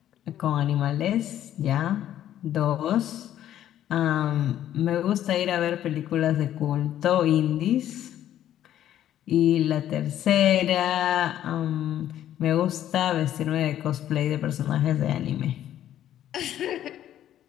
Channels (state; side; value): quieter; right; 11.6 dB